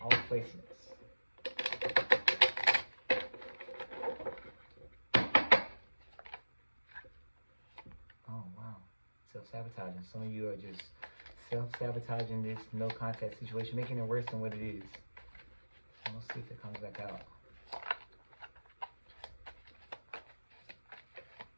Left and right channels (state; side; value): inverted; both; correlation -1.00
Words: placements. Oh wow. Self-sabotaging. Some of you are just self-sabotaging this no contact situation, making it worse than what it is. So let's see if it comes back out.